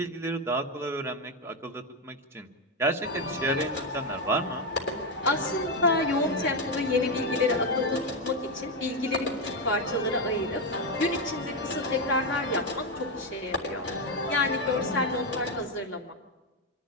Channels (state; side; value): normal; both; correlation 0.07